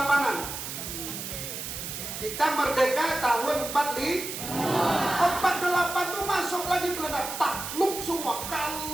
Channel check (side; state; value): right; noise; hiss, 7 dB below the sound